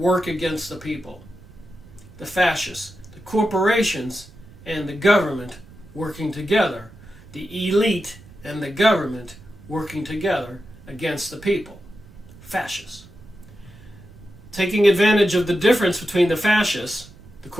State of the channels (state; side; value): noise; right; rumble, 21 dB below the sound